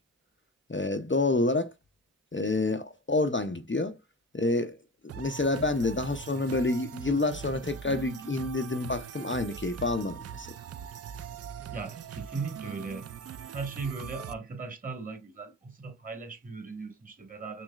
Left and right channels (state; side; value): normal; both; correlation 0.30